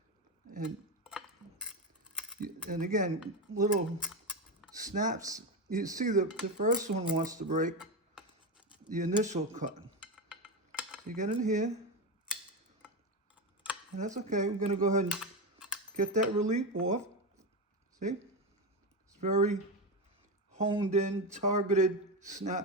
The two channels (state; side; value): normal; both; correlation 0.14